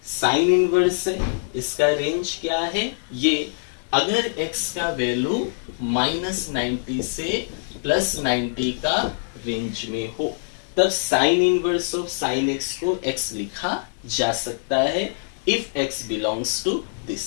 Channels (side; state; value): right; silent; digital silence